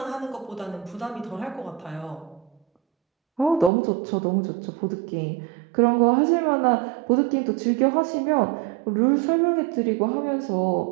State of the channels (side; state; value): left; drops out; at 3.7 s